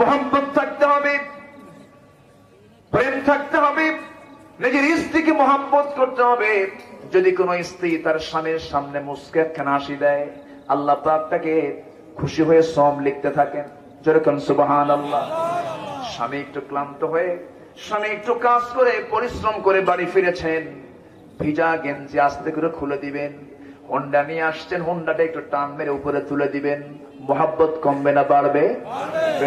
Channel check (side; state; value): both; identical; correlation 1.00